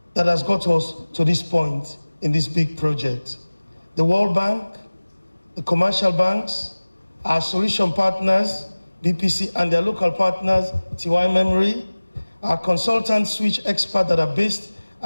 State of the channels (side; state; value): both; inverted; correlation -1.00